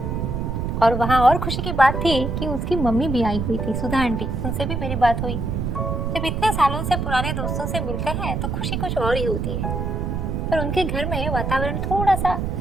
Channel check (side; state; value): right; noise; rumble, 2 dB below the sound